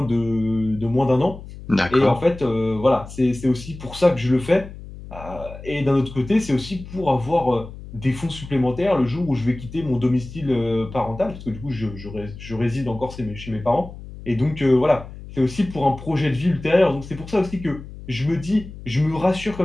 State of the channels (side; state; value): left; noise; hum, 14 dB below the sound